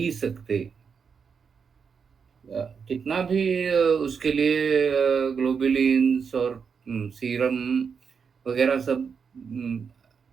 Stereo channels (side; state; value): left; quieter; 6.1 dB